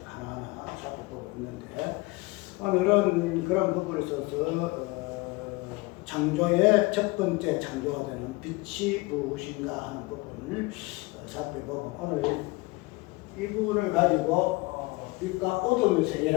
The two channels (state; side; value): quieter; right; 23.4 dB